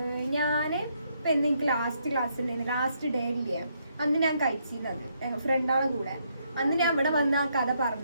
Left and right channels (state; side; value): inverted; both; correlation -0.74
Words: ഞാന് ഇപ്പൊ എനിക്ക് ലാസ്റ്റ് ക്ലാസ്സിൽ ലാസ്റ്റ് ഡേ ഇല്ലേ അന്ന് ഞാൻ കഴിച്ചിരുന്നത് ഞങ്ങൾ ഫ്രണ്ടാളെ കൂടെ. അന്ന് ഞാൻ ഇവിടെ വന്ന് ആ കഥ